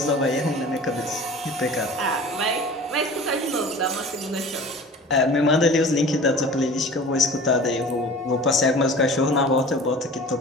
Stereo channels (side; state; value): both; normal; correlation 0.41